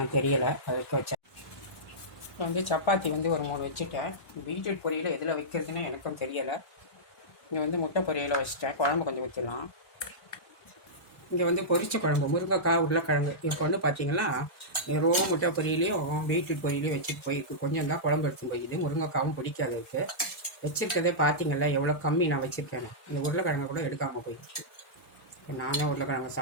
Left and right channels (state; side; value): late; right; 1.1 ms